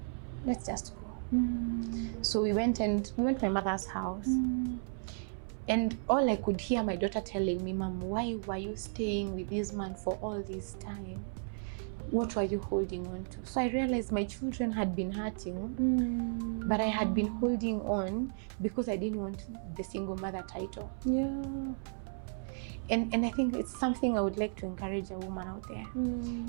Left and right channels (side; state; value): left; silent; 55 dB below the other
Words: Let's just go. So we went to my mother's house. And all I could hear my daughter telling me, Mom, why were you staying with this man for all this time? What were you holding on to? So I realized my children had been hurting, but I had been holding on because I didn't want the single mother title. And I think it's something I would like to encourage a woman out there.